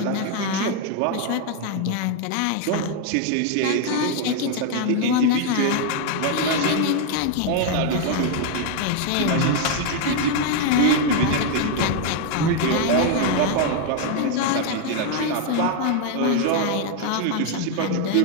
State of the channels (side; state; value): both; different; correlation 0.00